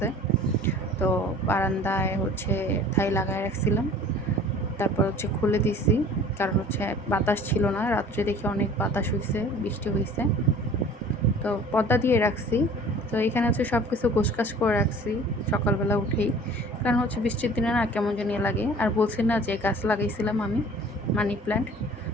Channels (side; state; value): both; normal; correlation 0.47